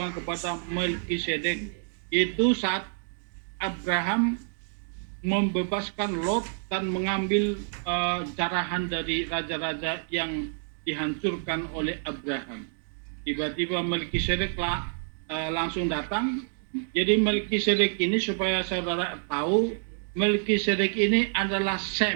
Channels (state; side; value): silent; left; digital silence